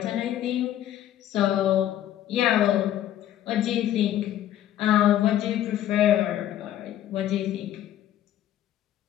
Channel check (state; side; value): quieter; right; 12.0 dB